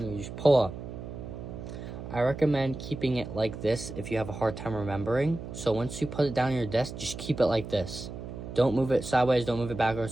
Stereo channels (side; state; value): right; noise; hum, 10 dB below the sound